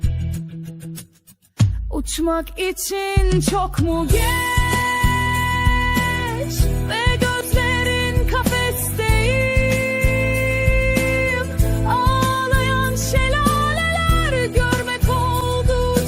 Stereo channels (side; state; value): both; identical; correlation 1.00